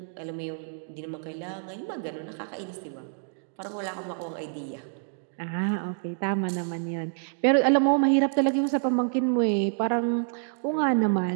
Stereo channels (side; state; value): left; silent; digital silence